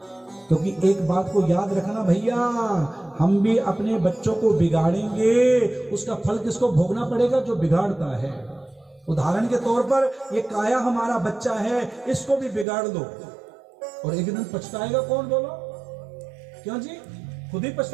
क्योंकि एक बात को याद रखना भैया, हम भी अपने बच्चों को बिगाड़ेंगे, उसका फल किसको भोगना पड़ेगा? जो बिगाड़ता है। उदाहरण के तौर पर ये काया हमारा बच्चा है, इसको भी बिगाड़ दो और एक दिन पछताएगा कौन? बोलो क्यों जी? खुद ही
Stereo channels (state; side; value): drops out; left; at 12.7 s